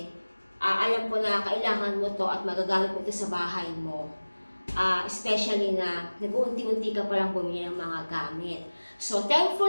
alam ko na kailangan mo to at magagamit mo to sa bahay mo. Especially na nag-uunti-unti ka palang bumili ng mga gamit. So,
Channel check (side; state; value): both; inverted; correlation -1.00